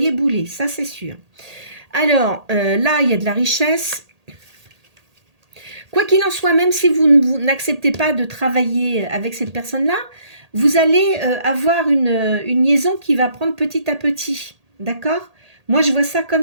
bouler, ça c'est sûr. Alors, là, il y a de la richesse. Quoi qu'il en soit, même si vous n'acceptez pas de travailler avec cette personne-là, vous allez avoir une liaison qui va prendre petit à petit. D'accord? Moi, je vois ça comme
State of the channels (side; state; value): left; late; 1.8 ms